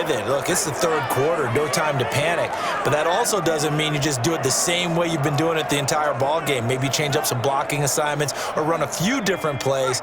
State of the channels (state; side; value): identical; both; correlation 1.00